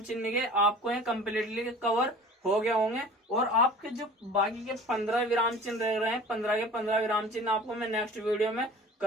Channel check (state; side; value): normal; both; correlation 0.43